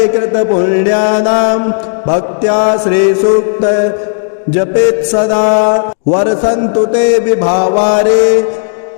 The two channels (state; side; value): silent; right; digital silence